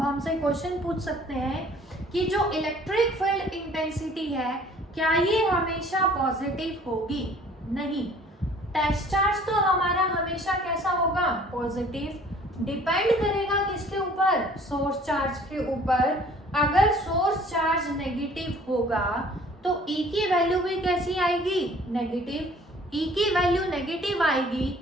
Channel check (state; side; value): normal; both; correlation 0.53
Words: हमसे क्वेश्चन पूछ सकते हैं कि जो इलेक्ट्रिक फील्ड इंटेंसिटी है क्या ये हमेशा पॉजिटिव होगी, नहीं। टेस्ट चार्ज तो हमारा हमेशा कैसा होगा, पॉजिटिव। डिपेंड करेगा किसके ऊपर, सोर्स चार्ज के ऊपर। अगर सोर्स चार्ज नेगेटिव होगा तो E की वैल्यू भी कैसी आएगी, नेगेटिव। E की वैल्यू नेगेटिव आएगी,